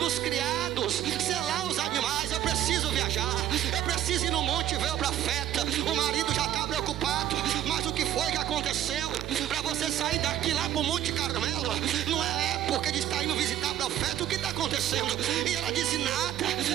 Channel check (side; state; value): left; quieter; 11.6 dB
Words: os criados selar os animais, eu preciso viajar, eu preciso ir no monte ver o profeta. O marido já está preocupado: mas o que foi que aconteceu para você sair daqui lá para o Monte Carmelo? Não é época de estar indo visitar o profeta, o que está acontecendo? E ela disse: nada,